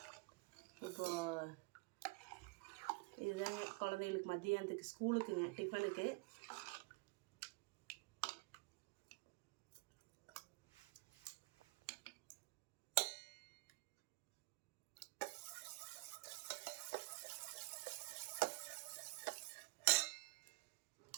இப்போது இதுதாங்க குழந்தைங்களுக்கு மதியானத்துக்கு ஸ்கூலுக்குங்க டிஃபனுக்கு.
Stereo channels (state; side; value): quieter; left; 25.9 dB